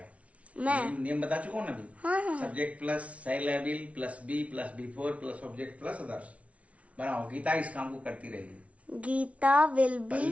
मैं नियम बता चुका हूँ ना अभी। हाँ। सब्जेक्ट प्लस सेल या will plus be plus B4 plus object plus others. बनाओ, गीता इस काम को करती रहेगी। गीता विल पहले बी,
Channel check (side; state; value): left; late; 0.064 ms